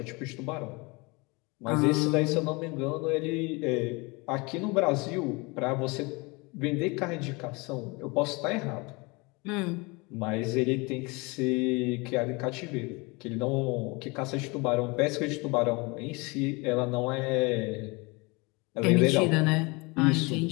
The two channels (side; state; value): right; quieter; 27.0 dB